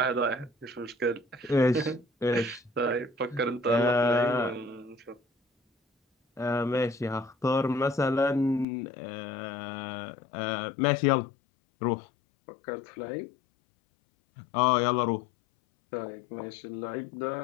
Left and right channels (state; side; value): drops out; right; at 8.7 s